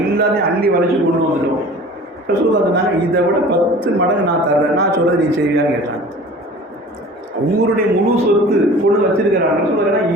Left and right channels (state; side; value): normal; both; correlation 0.43